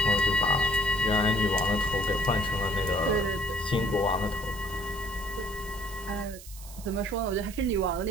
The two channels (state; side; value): noise; right; hiss, 17 dB below the sound